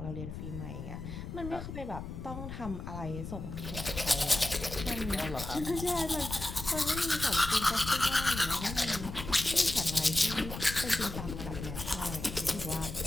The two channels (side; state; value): left; noise; rumble, 8 dB below the sound